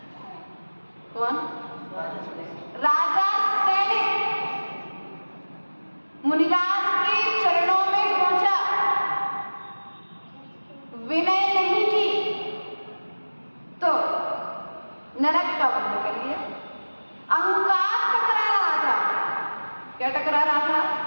कौन, राजा सैनिक मुनिराज के चरणों में पहुंचा, विनय नहीं की तो नरक का बंध कर लिया। अहंकार टकरा रहा था, क्या टकरा रहा था,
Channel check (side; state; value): both; inverted; correlation -1.00